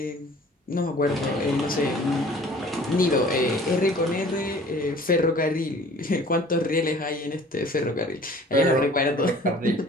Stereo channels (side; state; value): both; normal; correlation 0.49